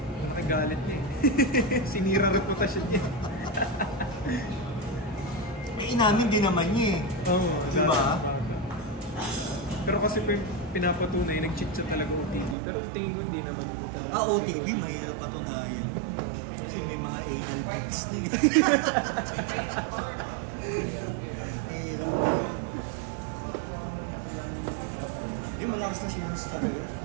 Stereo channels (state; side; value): drops out; left; at 12.6 s